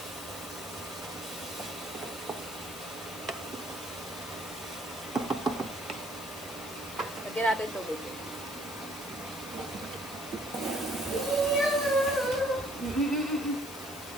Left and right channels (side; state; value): left; noise; hiss, 12 dB below the sound